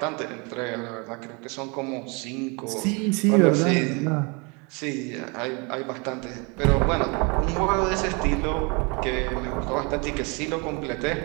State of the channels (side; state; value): left; quieter; 30.7 dB